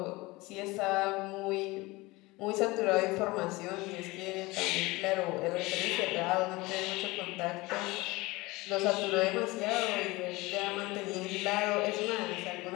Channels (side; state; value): right; quieter; 22.0 dB